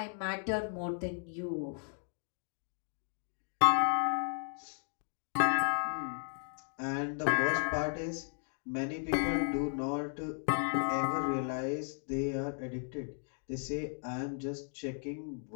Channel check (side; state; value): right; silent; 54 dB below the other